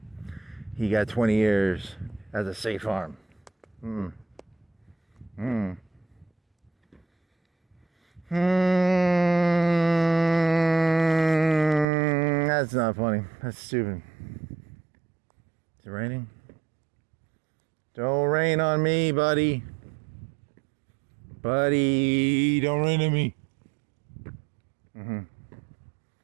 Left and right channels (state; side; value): drops out; left; at 11.9 s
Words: He got 20 years at the State Farm. That's not funny. That's stupid. Is it raining? Don't rain on me, buddy. Buddy, don't rain on me.